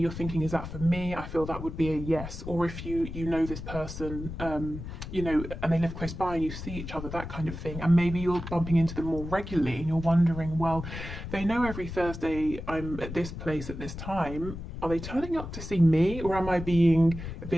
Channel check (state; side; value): noise; left; rumble, 9 dB below the sound